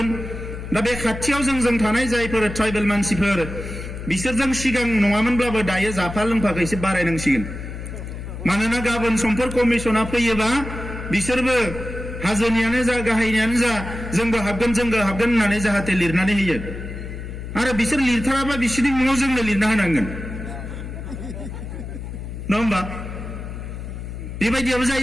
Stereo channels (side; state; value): left; noise; hum, 9 dB below the sound